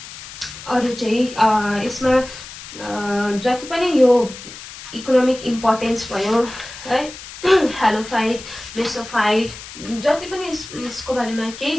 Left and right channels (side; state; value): left; noise; hiss, 14 dB below the sound